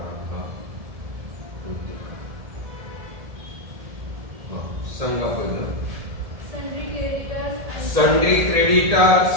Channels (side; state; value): left; late; 1.7 ms